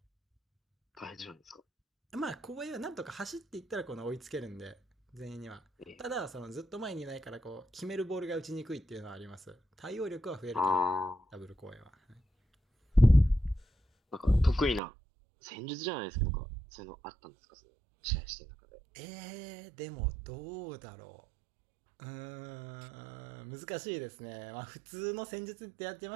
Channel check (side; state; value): left; drops out; at 14.8 s